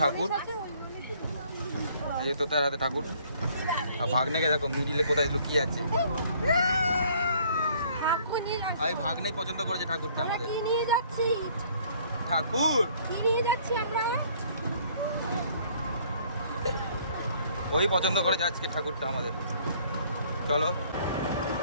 এই যে তোতার হাতে ঠাকুর। আর ভাগ্নেকে দেখো মিডিলে কোথায় লুকিয়ে আছে। এই ভাগ্নেই পছন্দ করেছে ঠাকুরটা আমাদের। কি নিয়ে যাচ্ছি? ঠাকুর কি নিয়ে যাচ্ছি আমরা? ওই পছন্দ করেছে আজকে ঠাকুরটা আমাদের। চলো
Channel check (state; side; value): inverted; both; correlation -0.60